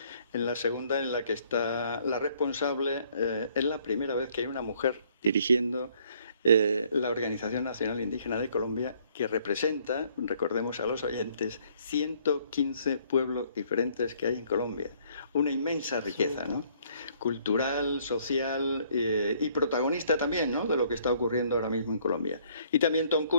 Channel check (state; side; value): inverted; both; correlation -0.63